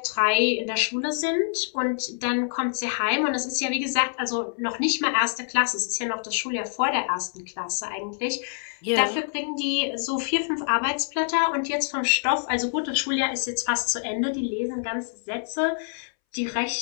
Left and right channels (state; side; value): silent; right; 61 dB below the other